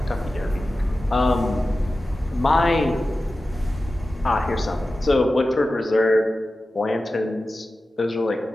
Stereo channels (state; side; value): normal; both; correlation 0.94